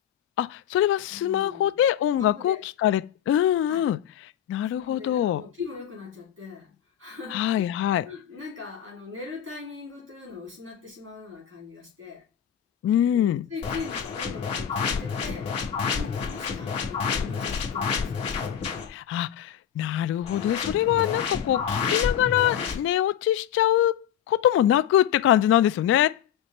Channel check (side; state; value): right; quieter; 10.1 dB